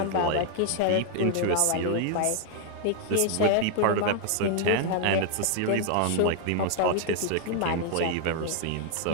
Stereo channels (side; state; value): both; different; correlation 0.00